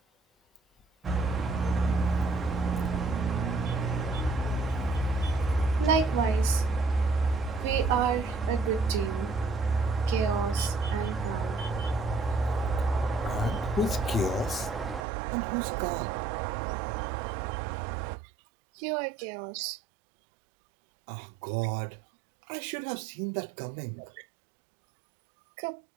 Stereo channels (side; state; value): left; drops out; at 15.1 s